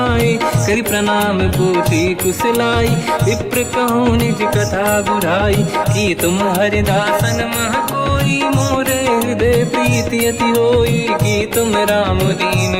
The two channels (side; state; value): both; identical; correlation 1.00